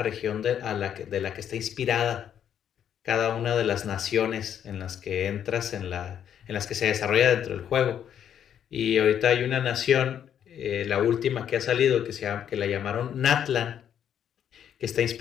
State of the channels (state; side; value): quieter; right; 9.3 dB